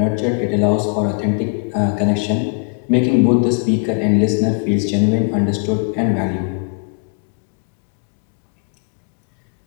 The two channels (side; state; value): right; quieter; 39.3 dB